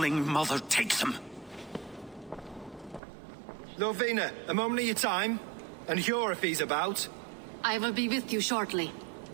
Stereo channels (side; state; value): left; drops out; at 3.0 s